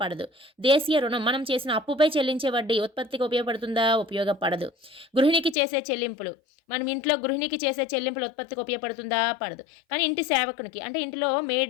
పడదు. దేశీయ రుణం మనం చేసిన అప్పుపై చెల్లించే వడ్డీ ఉత్పత్తికి ఉపయోగపడుతుందా? ఉపయోగపడదు. గృహిణికి చేసే చెల్లింపులు మనం ఇంట్లో గృహిణికి చేసే చెల్లింపులు ఉత్పత్తికి ఉపయోగపడుతుందా? పడదు. కానీ ఇంటి సేవకునికి అంటే ఇంటిలో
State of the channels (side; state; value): right; drops out; at 5.6 s